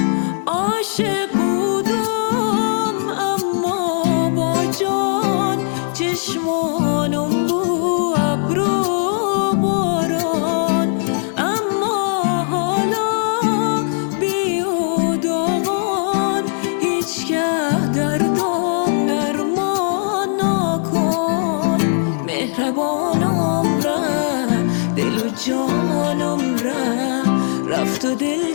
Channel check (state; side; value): silent; right; digital silence